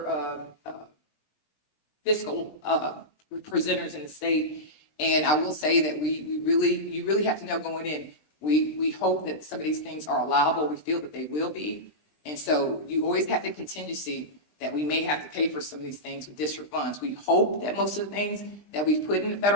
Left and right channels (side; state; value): right; late; 20 ms